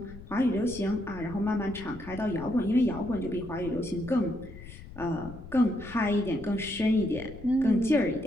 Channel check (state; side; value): noise; left; rumble, 15 dB below the sound